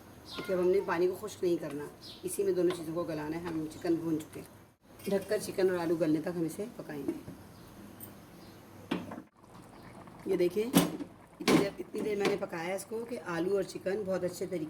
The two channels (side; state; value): both; identical; correlation 1.00